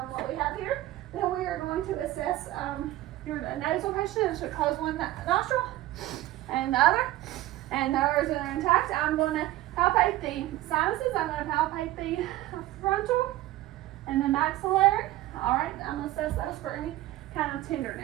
what we have here. Then we are going to assess your nasal patient. It should close one nostril and the other. And those are intact. I'm going to palpate the sinuses. I'm going to palpate the frontal and the maxillary. All right, I'm going to assess those for any kind of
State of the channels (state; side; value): quieter; left; 15.9 dB